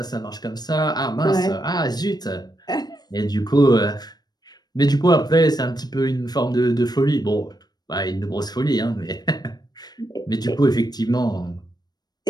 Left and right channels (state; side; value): late; right; 0.19 ms